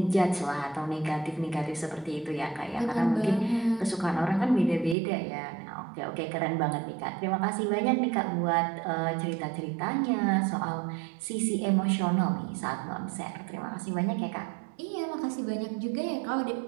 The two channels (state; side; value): drops out; left; at 5.0 s